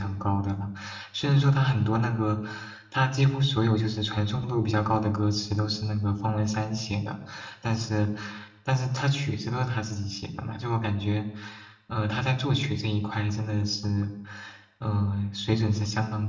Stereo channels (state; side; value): identical; both; correlation 1.00